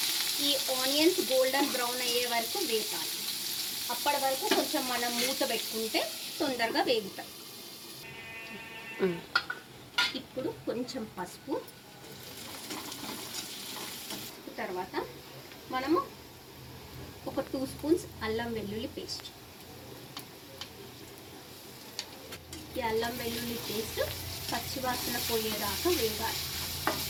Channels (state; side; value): identical; both; correlation 1.00